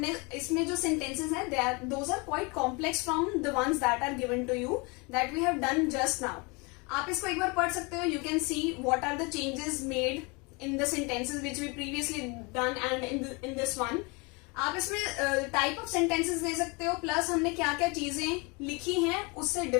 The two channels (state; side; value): quieter; right; 29.0 dB